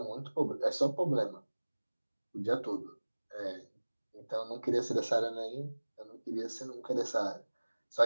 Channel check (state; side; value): inverted; both; correlation -1.00